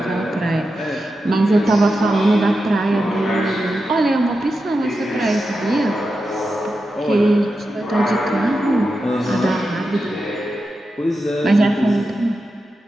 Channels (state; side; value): normal; both; correlation 0.90